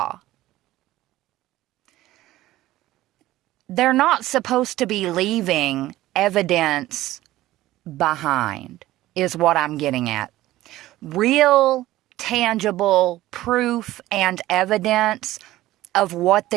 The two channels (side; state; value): left; quieter; 15.9 dB